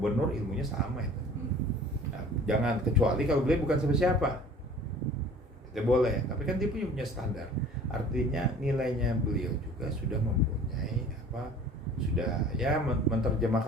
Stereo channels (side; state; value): both; normal; correlation 0.47